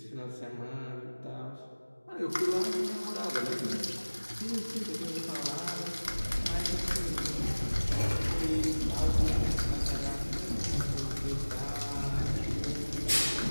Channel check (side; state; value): both; inverted; correlation -1.00